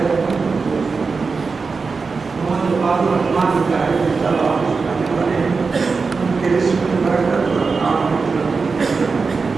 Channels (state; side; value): quieter; left; 4.6 dB